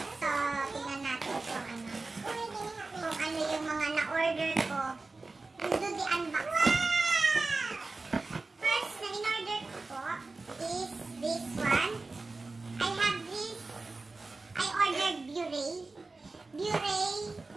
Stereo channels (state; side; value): quieter; left; 3.6 dB